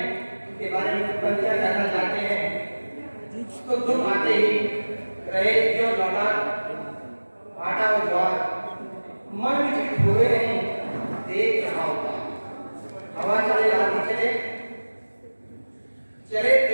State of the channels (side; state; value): both; inverted; correlation -1.00